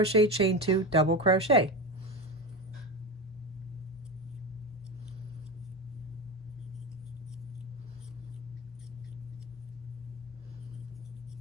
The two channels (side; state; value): both; normal; correlation 0.21